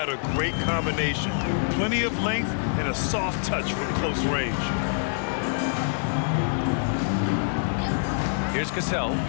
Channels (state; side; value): silent; right; digital silence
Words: a great combination. Plenty of length and a soft touch from close range. Here's Cassell.